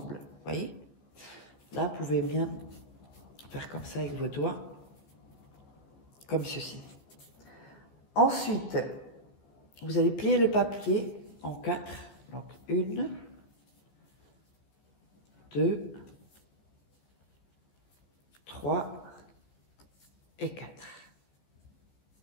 vous voyez? Là, vous pouvez bien faire comme ça avec vos doigts, comme ceci. Ensuite, vous allez plier le papier en 4, donc 1, 2, 3 et 4.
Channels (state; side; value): late; right; 15 ms